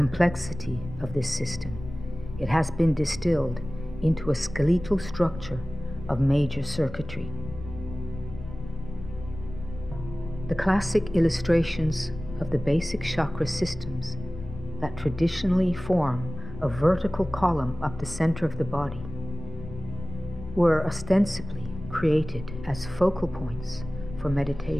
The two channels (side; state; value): left; noise; rumble, 12 dB below the sound